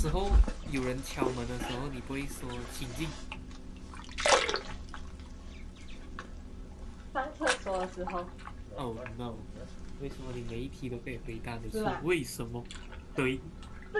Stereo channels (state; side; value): identical; both; correlation 1.00